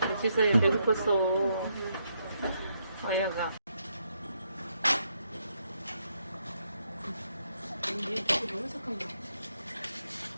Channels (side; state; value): both; inverted; correlation -0.78